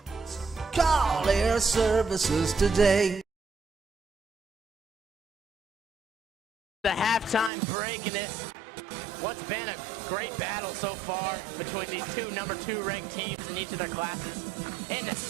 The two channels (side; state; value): left; drops out; at 7.5 s